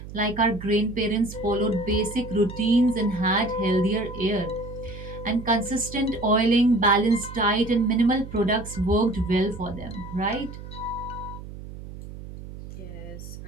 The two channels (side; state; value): right; noise; hum, 13 dB below the sound